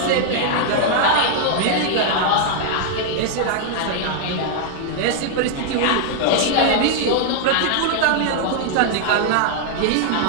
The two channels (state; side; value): different; both; correlation 0.00